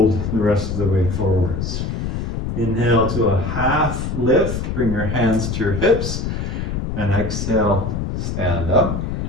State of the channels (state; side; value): noise; left; rumble, 3 dB below the sound